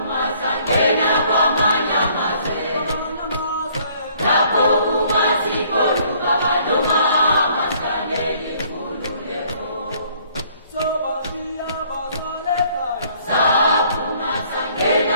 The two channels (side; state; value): both; inverted; correlation -0.61